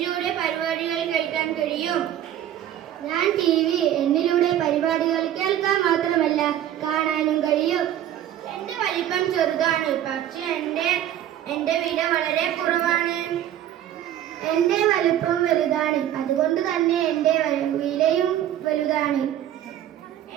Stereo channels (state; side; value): quieter; left; 11.6 dB